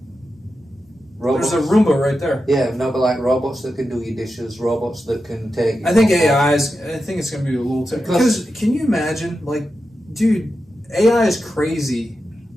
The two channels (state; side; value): normal; both; correlation 0.90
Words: There's a Roomba right there. Yeah, no, but like robots that can do your dishes, robots that can take... I think I think it's going to be a little... Because can you imagine, like, dude... AI is crazy.